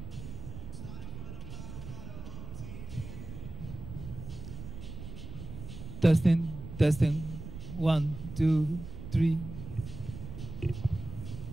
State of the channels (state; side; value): noise; right; rumble, 10 dB below the sound